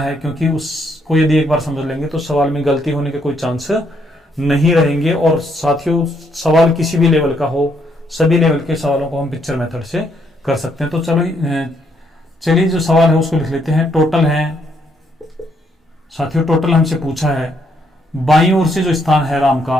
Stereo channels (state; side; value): normal; both; correlation 0.73